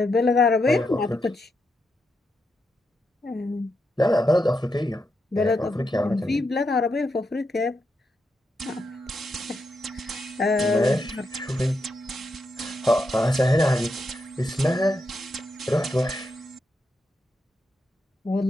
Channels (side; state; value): both; normal; correlation 0.83